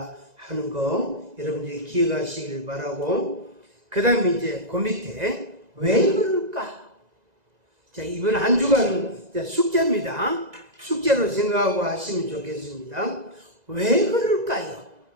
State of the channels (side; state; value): left; late; 2.0 ms